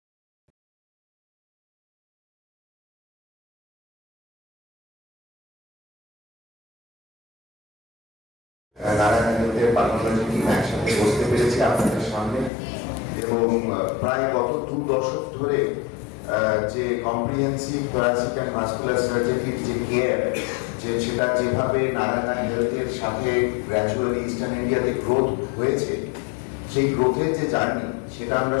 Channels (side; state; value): right; drops out; at 12.5 s